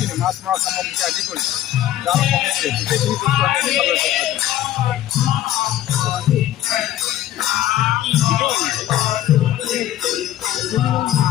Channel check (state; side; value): quieter; right; 13.0 dB